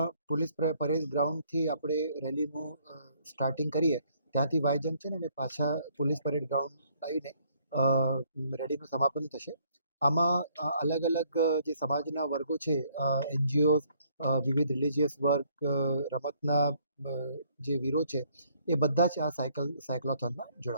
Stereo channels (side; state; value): both; inverted; correlation -0.65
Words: પોલીસ પરેડ ગ્રાઉન્ડથી આપણે રેલીનું સ્ટાર્ટિંગ કરીએ, ત્યાંથી વાય જંકશન અને પાછા પોલીસ પરેડ ગ્રાઉન્ડ આવીને રેલીનું સમાપન થશે. આમાં અલગ અલગ જે સમાજના વર્ગો છે, એનજીઓ, વિવિધ રિલિજિયસ વર્ગ, રમતના જે વીરો છે એ બધા જ આ સાયક્લોથોનમાં